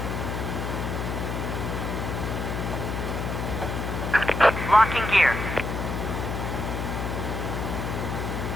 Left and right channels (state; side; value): noise; left; hum, 3 dB below the sound